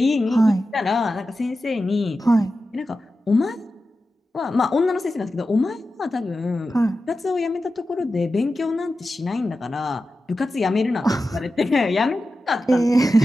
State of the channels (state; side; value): normal; both; correlation 0.92